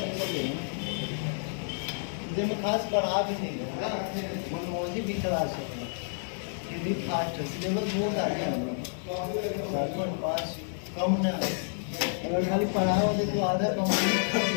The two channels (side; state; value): right; silent; 58 dB below the other